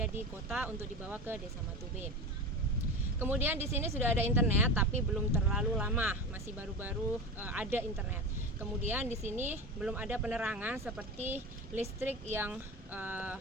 di kota untuk dibawa ke Desa Matube. Kemudian di sini sudah ada internet, tapi belum terlalu lama, masih baru-baru ada internet. Kemudian di sini belum ada penerangan seperti listrik yang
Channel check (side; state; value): both; normal; correlation 0.27